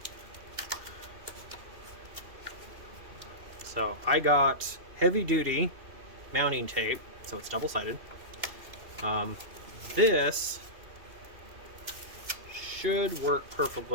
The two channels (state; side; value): late; left; 2.7 ms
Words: So I got heavy-duty mounting tape, so it's double-sided. This should work